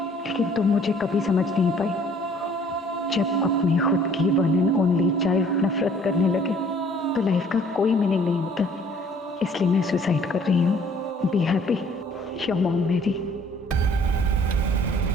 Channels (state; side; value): normal; both; correlation 0.57